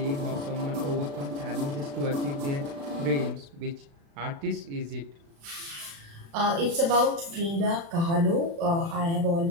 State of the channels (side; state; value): left; late; 36 ms